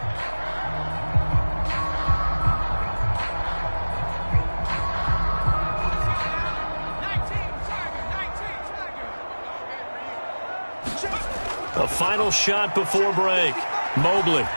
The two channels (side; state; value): both; inverted; correlation -1.00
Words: A final shot before break. Mobley